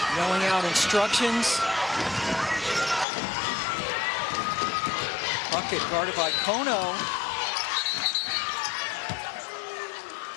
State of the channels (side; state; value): right; drops out; at 3.1 s